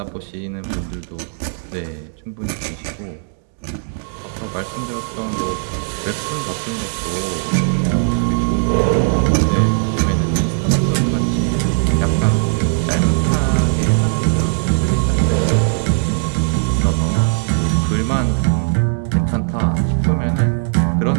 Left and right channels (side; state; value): left; silent; digital silence